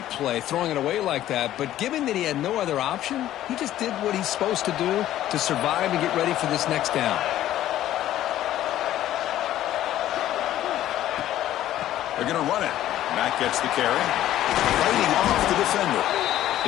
play, throwing it away like that, but given that he had no other option, he just did what he's supposed to do to survive and get ready for this next down. They're going to run it. Mack gets the carry. Fighting off the defender.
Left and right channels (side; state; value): right; quieter; 13.0 dB